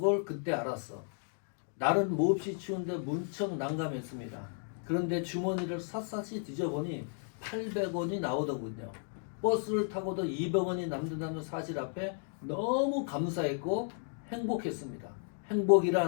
걸 그때 알았어. 날은 몹시 추운데 문척 난감했습니다. 그런데 주머니를 샅샅이 뒤져보니 800원이 나오더군요. 버스를 타고도 200원이 남는다는 사실 앞에 너무 감사했고 행복했습니다.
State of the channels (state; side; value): silent; right; 55 dB below the other